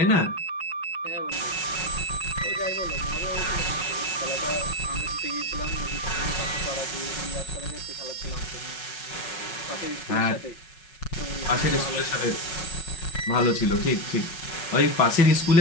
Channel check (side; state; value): right; late; 5.4 ms